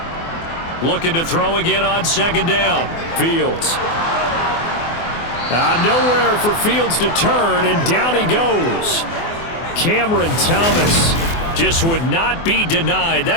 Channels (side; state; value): right; late; 24 ms